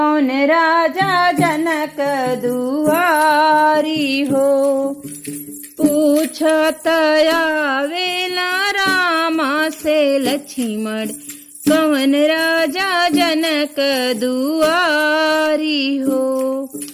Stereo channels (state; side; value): identical; both; correlation 1.00